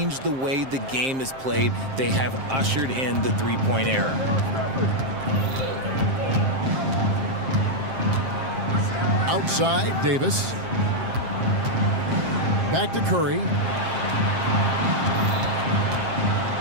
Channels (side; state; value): left; late; 7.5 ms